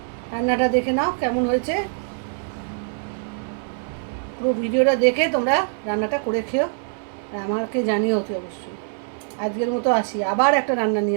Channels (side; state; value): left; silent; 59 dB below the other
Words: রান্নাটা দেখে নাও কেমন হয়েছে। পুরো ভিডিওটা দেখে তোমরা রান্নাটা করে খেও আর আমাকে জানিও অতি অবশ্যই। আজকের মতো আসি, আবার একটা রান্না